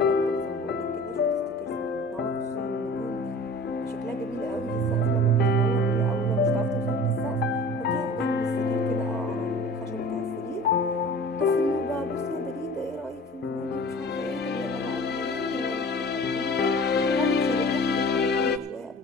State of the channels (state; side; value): normal; both; correlation 0.42